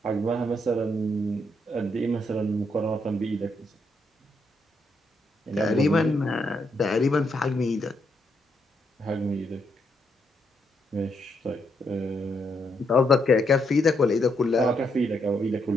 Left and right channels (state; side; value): normal; both; correlation 0.77